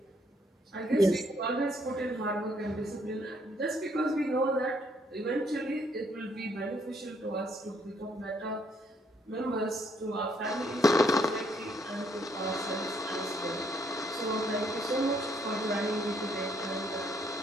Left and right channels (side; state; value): both; normal; correlation 0.70